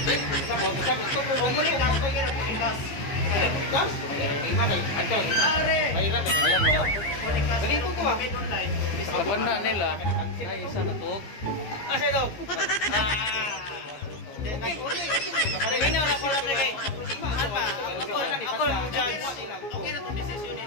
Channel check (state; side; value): late; right; 15 ms